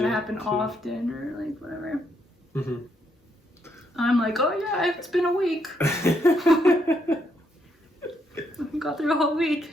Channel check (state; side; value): normal; both; correlation 0.76